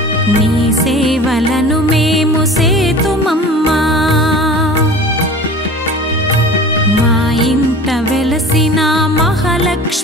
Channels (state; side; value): normal; both; correlation 0.39